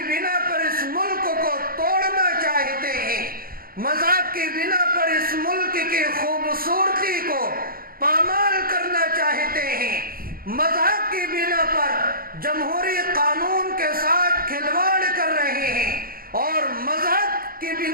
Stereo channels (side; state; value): left; late; 0.42 ms